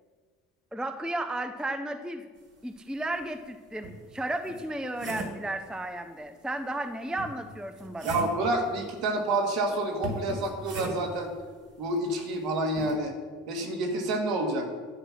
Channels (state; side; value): normal; both; correlation 0.39